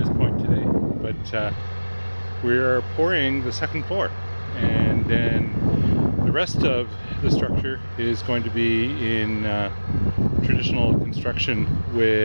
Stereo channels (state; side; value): inverted; both; correlation -1.00